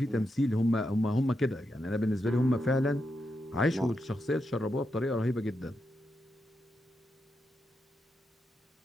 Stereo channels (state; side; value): normal; both; correlation 0.85